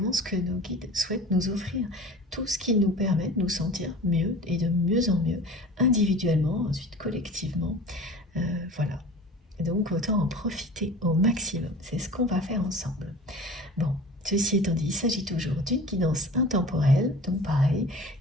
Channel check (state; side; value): normal; both; correlation 0.40